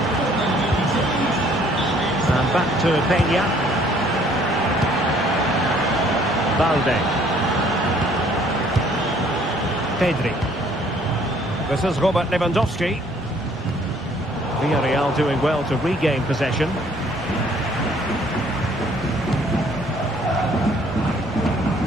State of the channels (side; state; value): right; noise; rumble, 20 dB below the sound